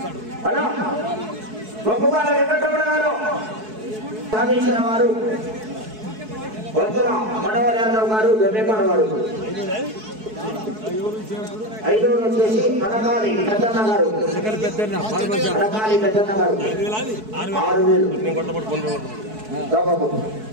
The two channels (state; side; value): late; left; 4.6 ms